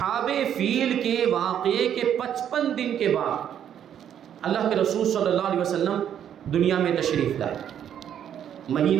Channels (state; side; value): quieter; left; 9.6 dB